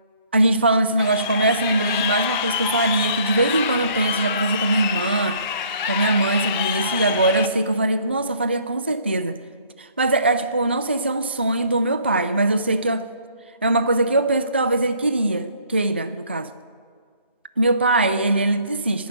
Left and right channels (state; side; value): inverted; both; correlation -0.60